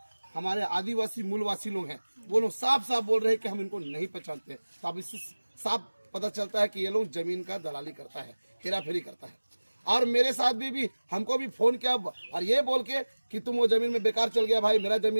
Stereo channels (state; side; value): inverted; both; correlation -1.00